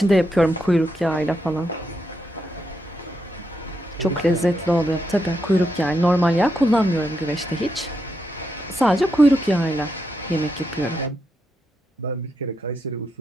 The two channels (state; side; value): normal; both; correlation 0.82